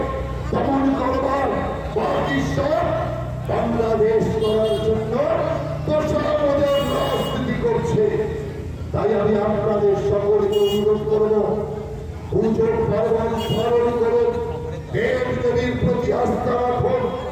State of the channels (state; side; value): identical; both; correlation 1.00